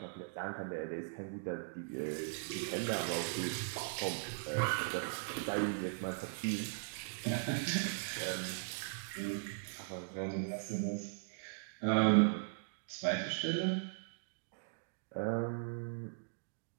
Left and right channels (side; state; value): left; silent; digital silence